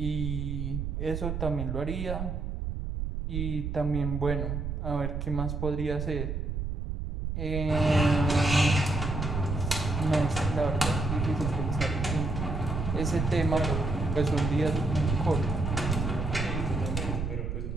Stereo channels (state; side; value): noise; right; rumble, 3 dB below the sound